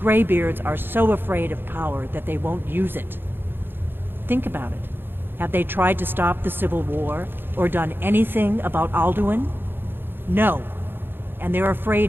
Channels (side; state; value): left; late; 0.10 ms